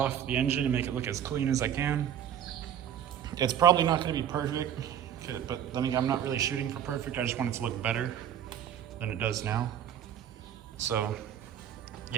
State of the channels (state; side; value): quieter; left; 9.8 dB